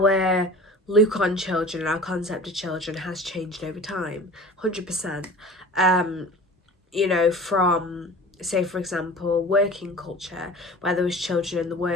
look on children, our concept of children has changed over time, 100%. You know, from, say for example, working culture, where there was children in the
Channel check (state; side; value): normal; both; correlation 0.40